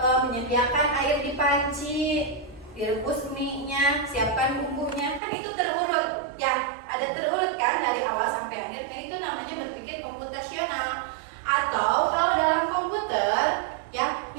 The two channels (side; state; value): left; drops out; at 5.2 s